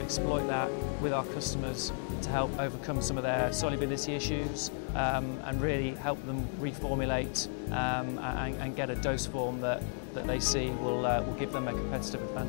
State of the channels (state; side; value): silent; right; 55 dB below the other